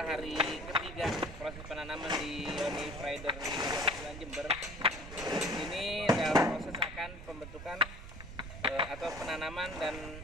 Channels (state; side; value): noise; right; rumble, 11 dB below the sound